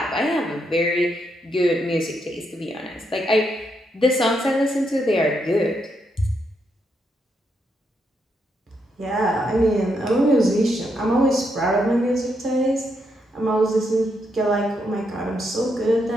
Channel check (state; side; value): normal; both; correlation 0.79